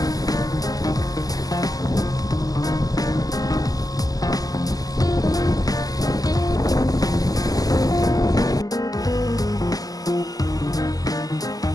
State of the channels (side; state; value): right; late; 0.17 ms